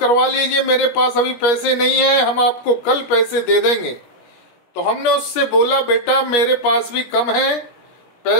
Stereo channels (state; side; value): late; right; 17 ms